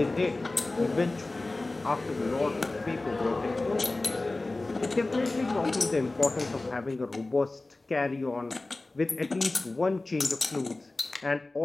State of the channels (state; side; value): quieter; right; 3.1 dB